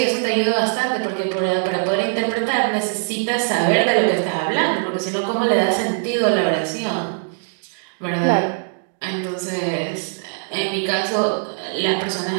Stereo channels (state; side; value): silent; left; digital silence